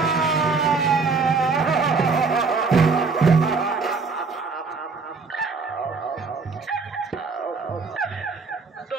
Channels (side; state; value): left; quieter; 4.5 dB